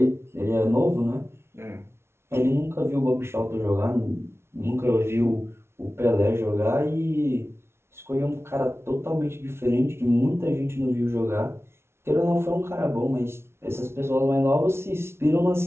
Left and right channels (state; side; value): late; left; 0.12 ms